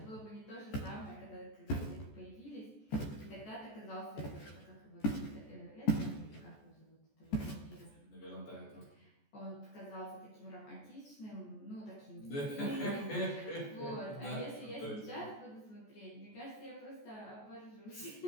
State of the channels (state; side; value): late; right; 14 ms